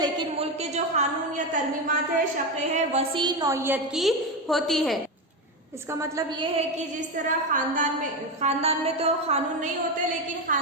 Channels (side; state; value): both; normal; correlation 0.14